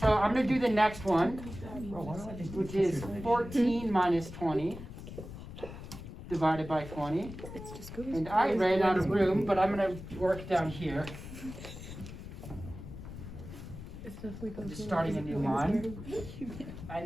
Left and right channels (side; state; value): left; noise; rumble, 12 dB below the sound